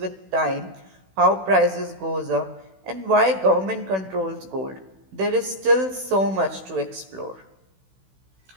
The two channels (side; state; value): left; late; 16 ms